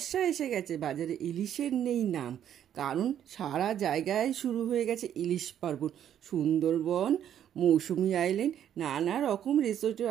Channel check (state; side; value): quieter; left; 10.1 dB